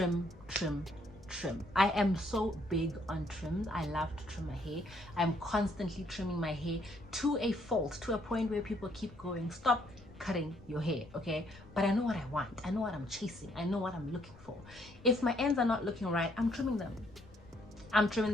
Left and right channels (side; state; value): left; noise; rumble, 22 dB below the sound